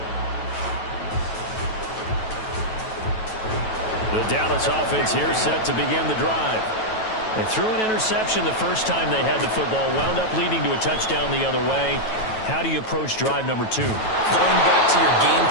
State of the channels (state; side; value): late; right; 9.2 ms